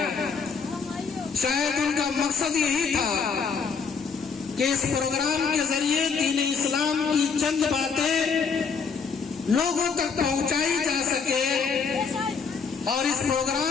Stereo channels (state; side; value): quieter; right; 5.7 dB